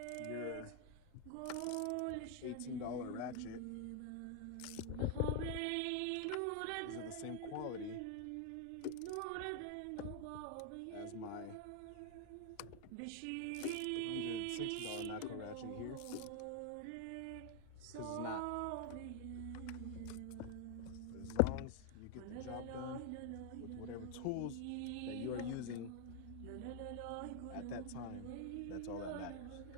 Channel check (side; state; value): both; different; correlation 0.01